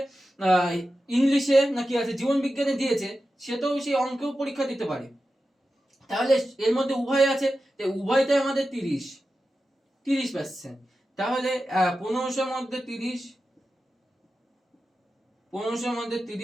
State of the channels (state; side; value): normal; both; correlation 0.92